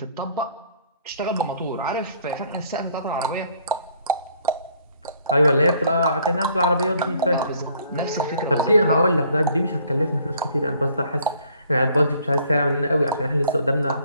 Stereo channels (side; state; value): both; inverted; correlation -0.61